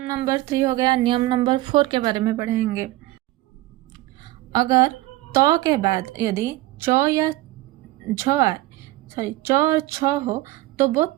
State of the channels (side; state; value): left; quieter; 17.3 dB